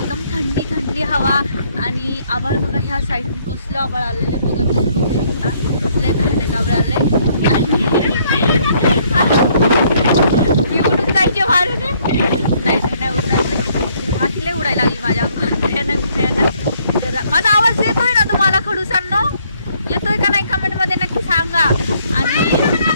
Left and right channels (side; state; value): both; inverted; correlation -0.66